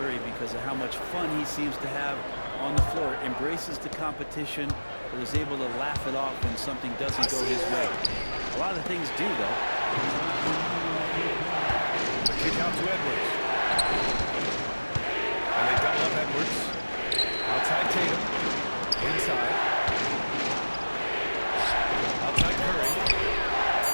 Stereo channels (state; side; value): inverted; both; correlation -1.00